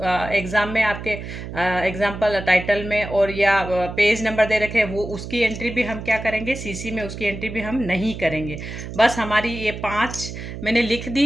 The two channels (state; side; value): noise; right; hum, 9 dB below the sound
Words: एग्ज़ाम में आपके एग्जाम्पल टाइटल में और या पेज नंबर दे रखे हैं, वो उसकी एंट्री भी हम क्या करेंगे, सीसी में उसकी एंट्री भी हम नहीं करेंगे। बस हमारी ये 5 मैंने लिख